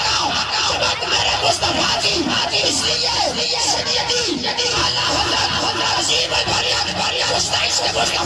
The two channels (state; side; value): identical; both; correlation 1.00